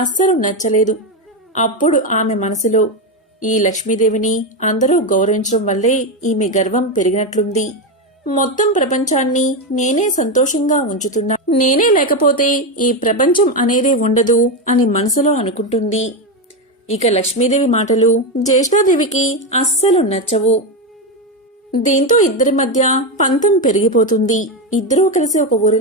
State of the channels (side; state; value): both; normal; correlation 0.11